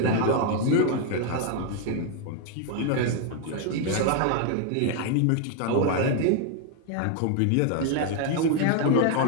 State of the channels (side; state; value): both; different; correlation 0.01